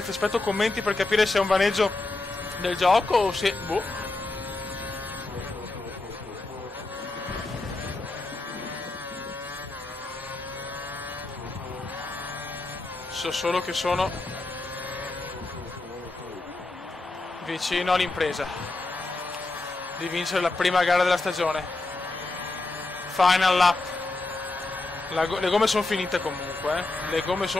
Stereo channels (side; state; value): right; quieter; 3.1 dB